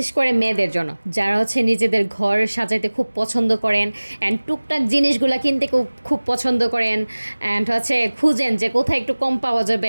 করে মেয়েদের জন্য, যারা হচ্ছে নিজেদের ঘর সাজাইতে খুব পছন্দ করেন অ্যান্ড টুকটাক জিনিসগুলো কিনতে খুব খুব পছন্দ করেন অ্যান্ড হচ্ছে খুঁজেন যে কোথায় একটু কম পাওয়া যাবে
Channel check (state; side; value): inverted; both; correlation -1.00